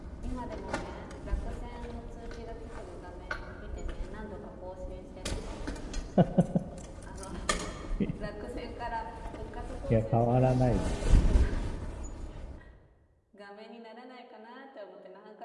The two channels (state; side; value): identical; both; correlation 1.00